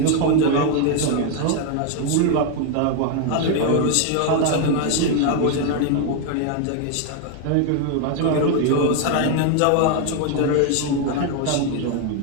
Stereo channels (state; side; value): different; both; correlation 0.01